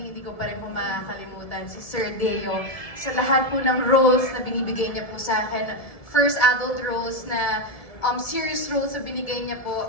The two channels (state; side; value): late; right; 1.7 ms